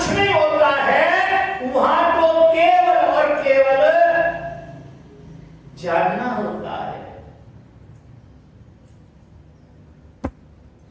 नहीं होता है। वहां तो केवल और केवल जानना होता है।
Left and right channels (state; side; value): identical; both; correlation 1.00